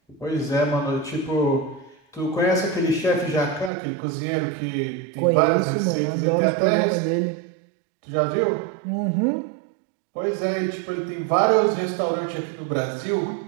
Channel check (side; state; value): left; drops out; at 3.7 s